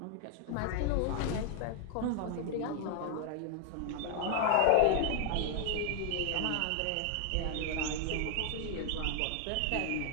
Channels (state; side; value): different; both; correlation 0.00